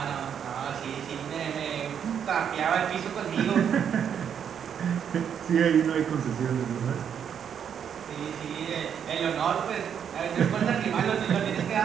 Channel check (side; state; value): left; quieter; 8.2 dB